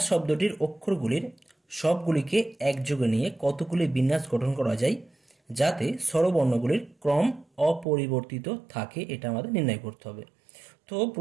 শব্দটির অক্ষরগুলির সবগুলিকে একযোগে নিয়ে কতগুলি বিন্যাস গঠন করা যায় যাতে স্বরবর্ণগুলির ক্রম অপরিবর্তিত থাকে, এটা আমাদের নির্ণয় করতে হবে। তো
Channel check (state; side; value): drops out; left; at 7.9 s